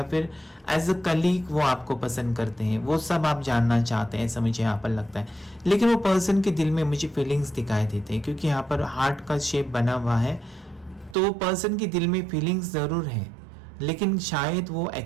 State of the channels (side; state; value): left; drops out; at 11.2 s